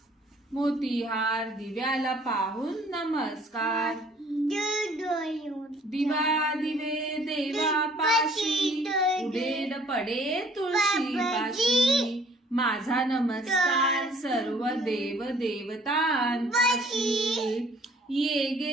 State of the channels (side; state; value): both; normal; correlation 0.57